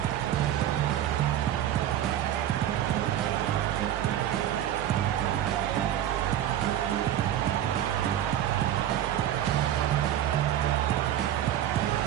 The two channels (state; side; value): quieter; left; 11.4 dB